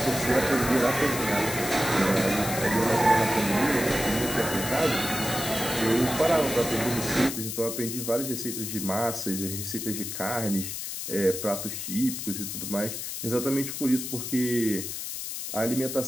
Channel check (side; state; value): left; noise; hiss, 6 dB below the sound